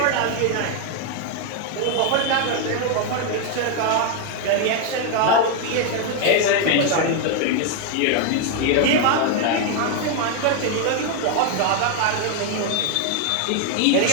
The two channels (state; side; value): different; both; correlation 0.01